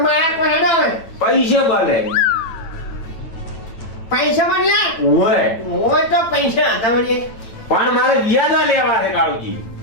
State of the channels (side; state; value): right; late; 8.9 ms